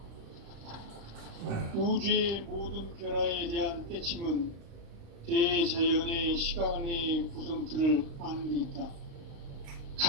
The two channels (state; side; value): late; left; 35 ms